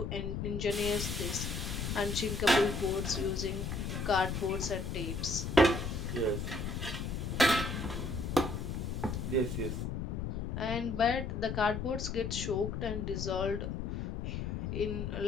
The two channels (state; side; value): noise; left; rumble, 3 dB below the sound